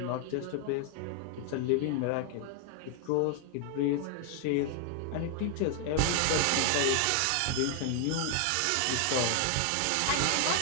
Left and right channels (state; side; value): different; both; correlation 0.00